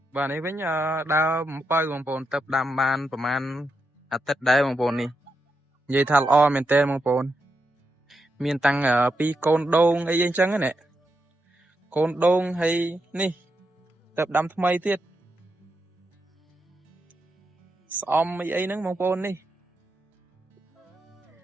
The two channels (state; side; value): normal; both; correlation 0.85